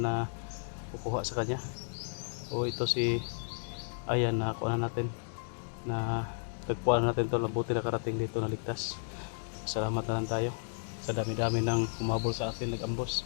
kukuha sa kanya. O ito si Ayan na kuha natin na tagpuan natin tol. Mabuti na karating dito na ligtas. Salamat na lang tayo sa dami-dami ng umabol sa atin, nag-ambos,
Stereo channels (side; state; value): right; silent; digital silence